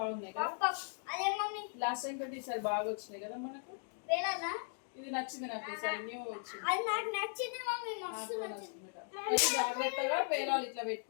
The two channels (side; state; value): right; silent; 53 dB below the other